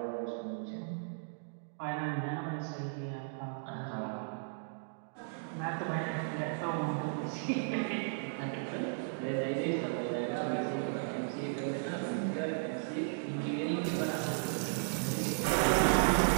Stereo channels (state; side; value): silent; left; digital silence